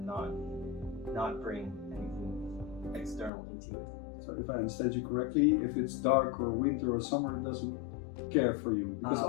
not bring anything external into it. So if I understand you correctly, if it's dark or winter or summer, it doesn't care for you. Because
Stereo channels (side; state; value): right; drops out; at 3.3 s